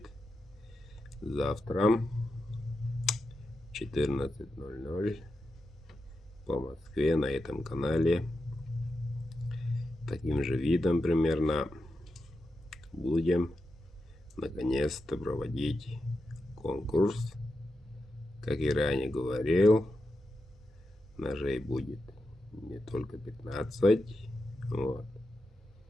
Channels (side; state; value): both; normal; correlation 0.88